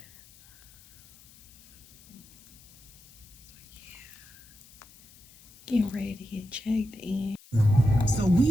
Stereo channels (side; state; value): left; noise; hiss, 24 dB below the sound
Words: So yeah, getting ready to get checked in. So